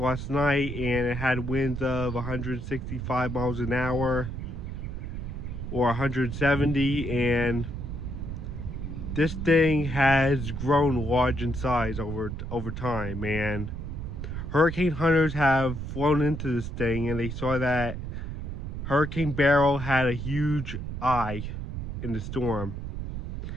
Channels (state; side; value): noise; right; rumble, 6 dB below the sound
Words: night, and it had winds of 165 miles an hour or 170, and this thing has grown large in size over time, and hurricane hunters have flown into this thing, and they saw that Hurricane Beryl had a huge eye in the storm,